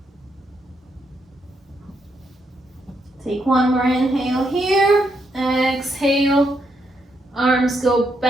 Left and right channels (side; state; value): both; normal; correlation 0.78